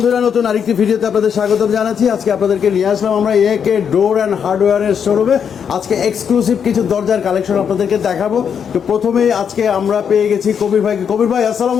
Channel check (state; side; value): quieter; right; 7.5 dB